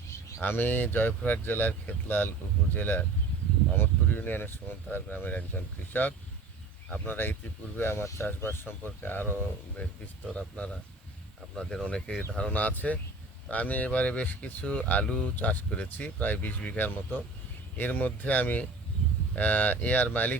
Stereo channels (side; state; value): left; quieter; 3.4 dB